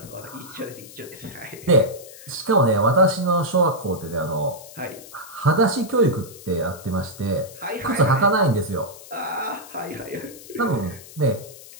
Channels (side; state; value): left; noise; hiss, 18 dB below the sound